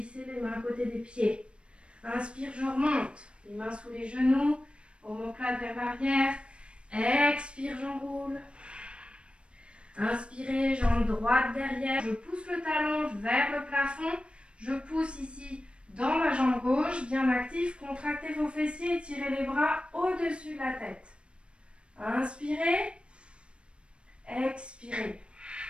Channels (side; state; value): left; late; 0.058 ms